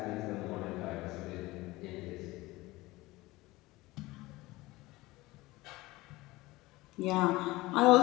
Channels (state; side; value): quieter; right; 20.0 dB